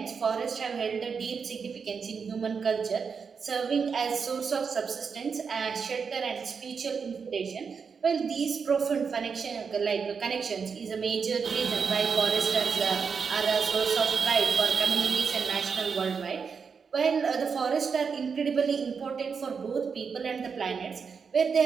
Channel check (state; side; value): quieter; left; 5.9 dB